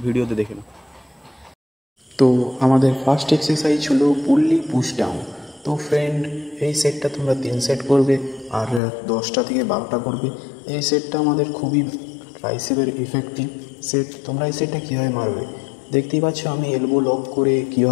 ভিডিওতে দেখে নাও। তো আমাদের ফার্স্ট এক্সারসাইজ হলো পুল্লি পুশ ডাউন। তো ফ্রেন্ড, এই সেটটা তোমরা 3 সেট করবে আর 10টা থেকে 12টা করবে। এই সেটটা আমাদের খুবই ট্রাইসেপের ইফেক্টিভ সেট। তোমরা এই সেটটা কীভাবে মারবে দেখতেই পাচ্ছ, আমি এলবো লক করে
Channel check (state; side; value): drops out; right; at 8.8 s